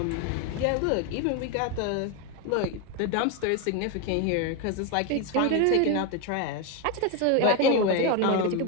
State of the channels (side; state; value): both; different; correlation 0.02